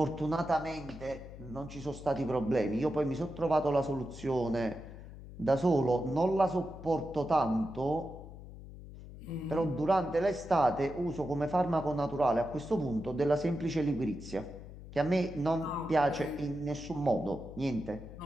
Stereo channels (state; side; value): noise; left; hum, 14 dB below the sound